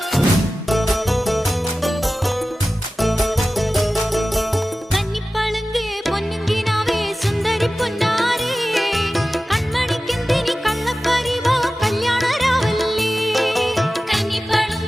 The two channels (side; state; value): both; normal; correlation 0.95